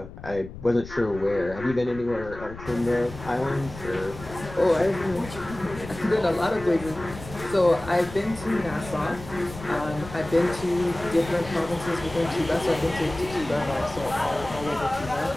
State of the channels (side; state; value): left; noise; rumble, 14 dB below the sound